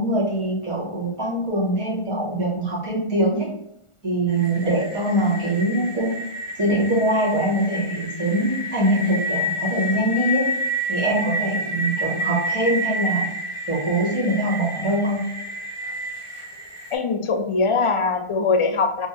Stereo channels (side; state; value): right; late; 1.4 ms